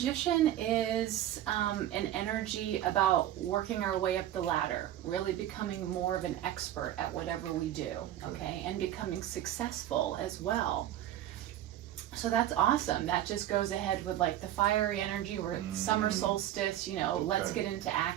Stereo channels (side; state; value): left; quieter; 12.5 dB